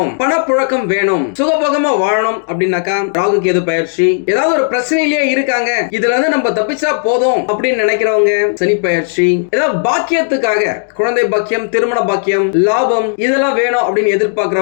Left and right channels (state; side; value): silent; right; digital silence